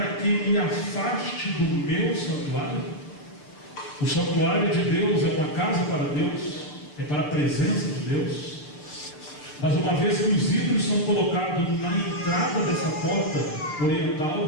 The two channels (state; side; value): late; right; 6.7 ms